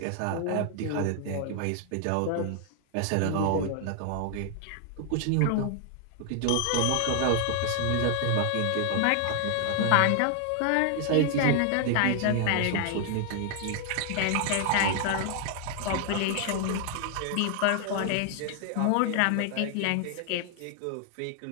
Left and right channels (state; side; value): different; both; correlation 0.00